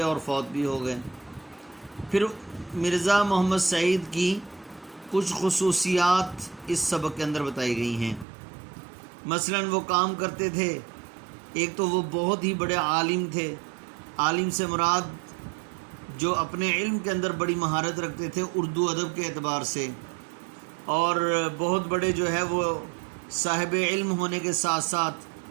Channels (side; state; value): left; drops out; at 8.2 s